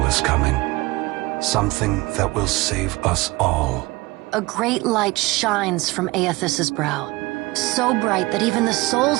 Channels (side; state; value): left; quieter; 21.8 dB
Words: is coming. Something that will save us all. A great light shines from Aethys' brow, so bright that even the